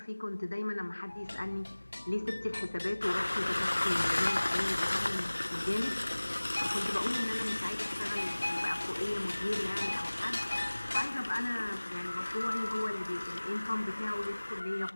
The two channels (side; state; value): both; inverted; correlation -1.00